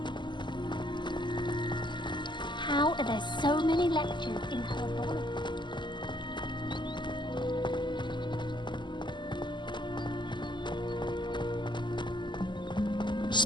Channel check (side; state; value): right; late; 0.22 ms